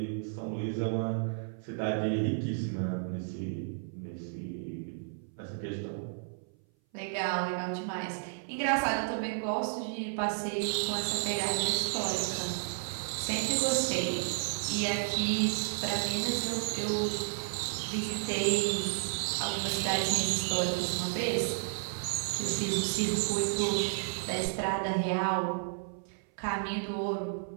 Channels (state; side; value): silent; left; 56 dB below the other